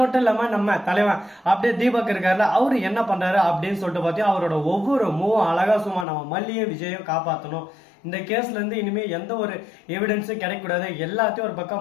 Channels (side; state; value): right; drops out; at 6.1 s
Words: மட்டும் இல்லாம நம்ம தலைவன் அப்படியே தீபக் இருக்காருல, அவரு என்ன பண்றாரு அப்படின்னு சொல்லிட்டு பார்த்தீங்கன்னா அவரோட ஒவ்வொரு மூவும் அழகா சும்மா நம்ம மல்லியும் விஜயும் காப்பாற்றணும், இந்த கேஸ்ல இருந்து இனிமே எந்த ஒரு எவிடன்ஸும் கிடைக்கூடாது, எல்லாத்தையும் ஒரு